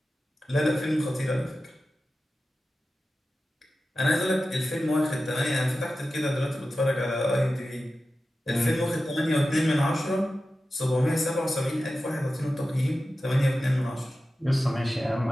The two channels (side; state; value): both; normal; correlation 0.94